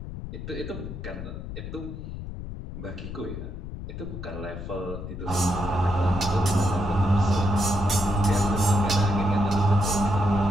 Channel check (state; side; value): noise; left; rumble, 9 dB below the sound